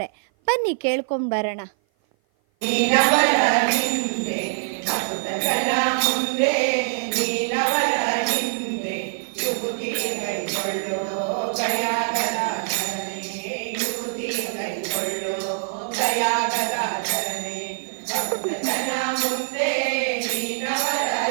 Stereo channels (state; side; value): silent; left; 56 dB below the other